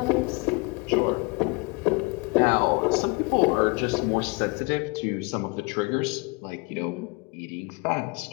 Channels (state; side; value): quieter; right; 28.4 dB